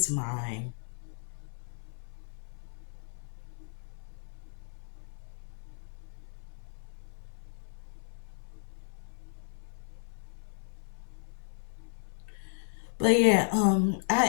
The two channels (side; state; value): right; silent; 55 dB below the other